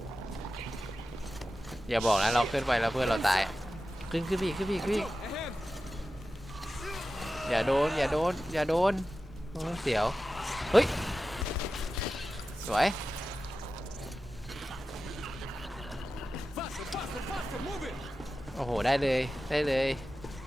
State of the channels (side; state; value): both; normal; correlation 0.93